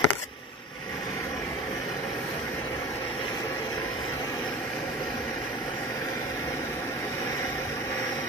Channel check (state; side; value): normal; both; correlation 0.38